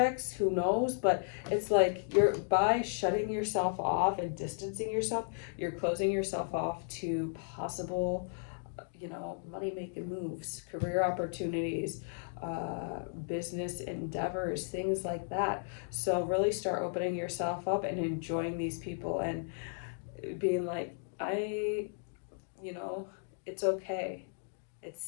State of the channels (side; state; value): right; silent; digital silence